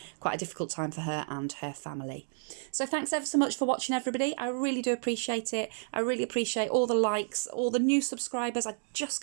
quite a difficult time for her and her family. So thanks ever so much for watching, everybody. I really do appreciate it. I really appreciate all the likes, all the new subscribers. I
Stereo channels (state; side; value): silent; left; 57 dB below the other